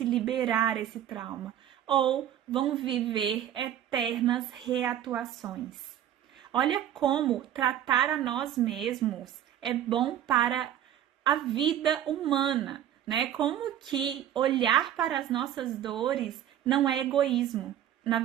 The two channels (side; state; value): left; quieter; 11.0 dB